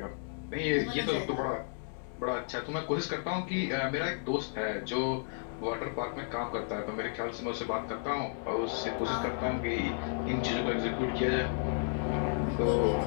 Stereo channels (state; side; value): silent; right; 56 dB below the other